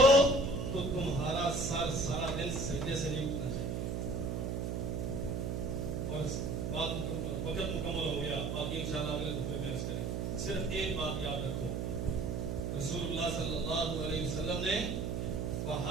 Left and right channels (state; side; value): noise; right; hum, 1 dB below the sound